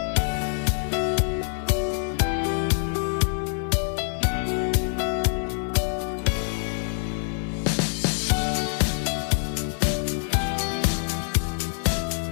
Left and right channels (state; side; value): silent; right; 62 dB below the other